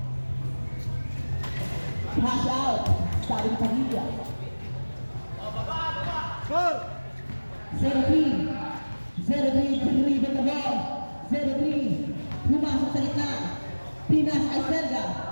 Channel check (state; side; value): inverted; both; correlation -1.00